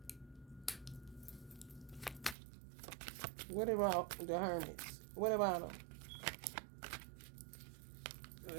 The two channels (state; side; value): drops out; left; at 2.4 s